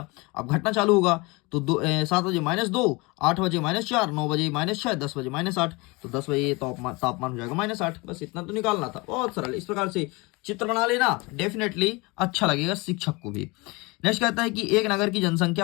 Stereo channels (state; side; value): quieter; right; 25.6 dB